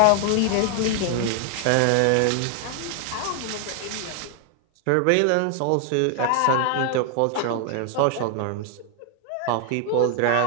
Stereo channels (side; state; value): both; different; correlation 0.00